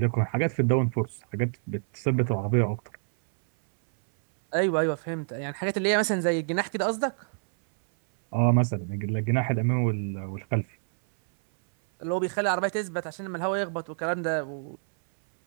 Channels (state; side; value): silent; left; 60 dB below the other